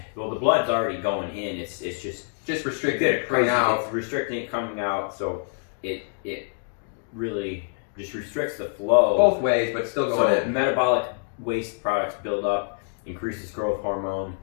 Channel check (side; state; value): right; silent; 61 dB below the other